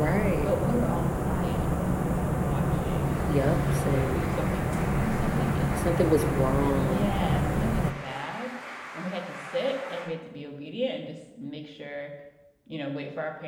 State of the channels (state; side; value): identical; both; correlation 1.00